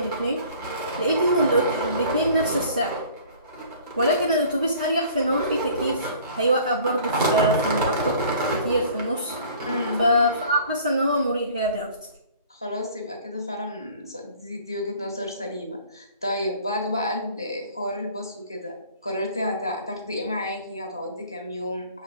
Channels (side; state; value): both; inverted; correlation -0.50